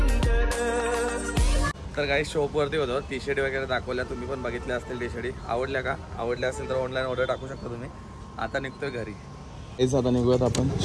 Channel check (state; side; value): identical; both; correlation 1.00